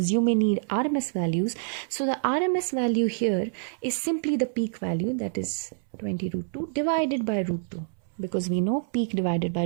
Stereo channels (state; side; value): silent; left; 60 dB below the other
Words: you may need RMS values. So the RMS value here is simply the peak value, that is 20 root 2 divided by root 2, because we know peak divided by